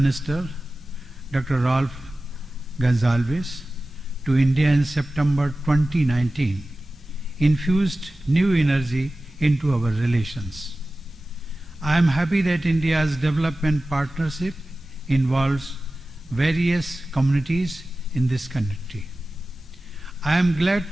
Dr. Ralph Gonsalves, to India in September 2019 infused new energy into our relations. I am happy that India's development partnership involves various communities in this country. I am glad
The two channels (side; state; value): both; normal; correlation 0.95